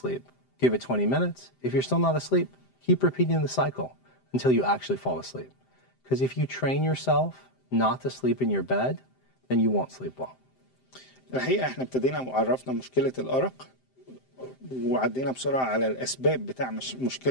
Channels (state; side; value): late; right; 7.7 ms